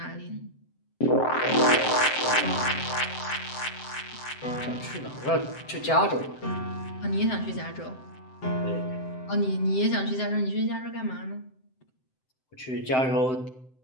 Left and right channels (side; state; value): right; late; 7.7 ms